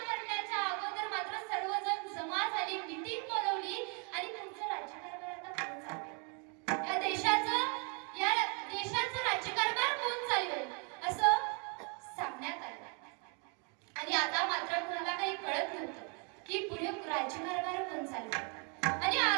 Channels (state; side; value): quieter; left; 35.9 dB